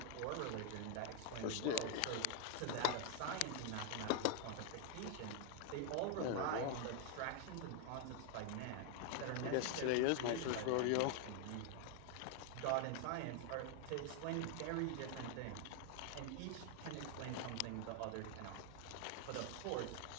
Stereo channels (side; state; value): both; different; correlation 0.00